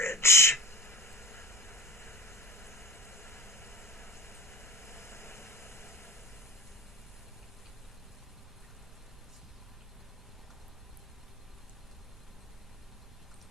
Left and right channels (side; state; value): both; normal; correlation 0.35